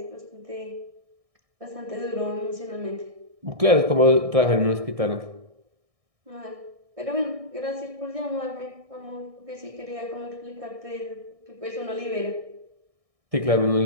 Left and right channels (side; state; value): left; late; 1.6 ms